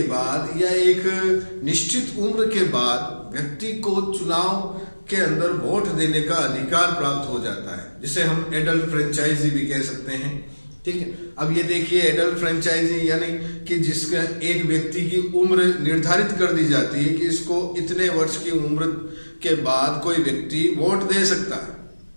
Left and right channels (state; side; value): inverted; both; correlation -1.00